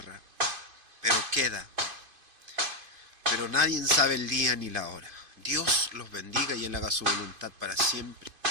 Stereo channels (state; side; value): late; left; 2.5 ms